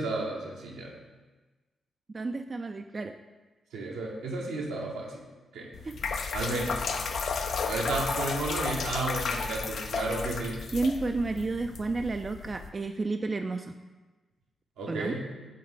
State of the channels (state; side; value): normal; both; correlation 0.78